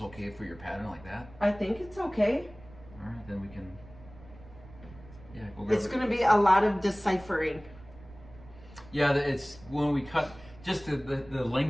okay for your pattern like that? I think it's okay. All right, then we can. Yeah, it's going to be a lot of deciphering. Yeah, it's when we cut just the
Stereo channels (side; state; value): right; noise; rumble, 20 dB below the sound